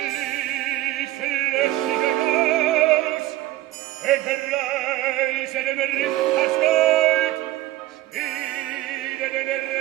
löschige Haus, entreiße dem Ritters Gold, spiele den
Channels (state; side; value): quieter; left; 16.1 dB